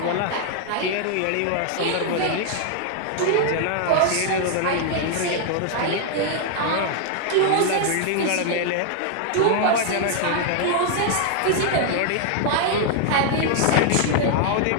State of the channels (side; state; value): both; different; correlation 0.00